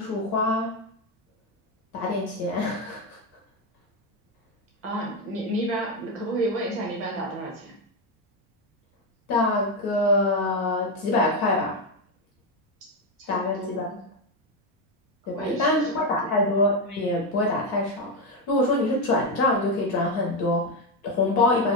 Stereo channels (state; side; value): normal; both; correlation 0.08